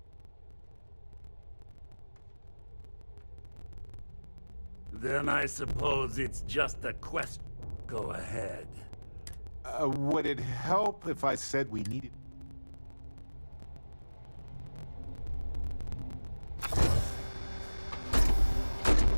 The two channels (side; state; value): both; inverted; correlation -1.00